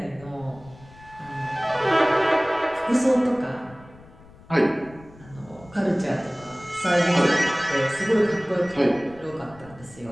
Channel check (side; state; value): left; noise; rumble, 22 dB below the sound